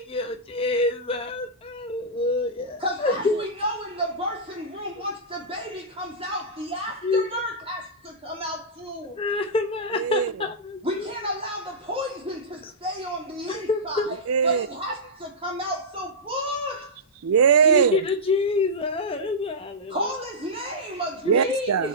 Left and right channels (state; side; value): normal; both; correlation -0.12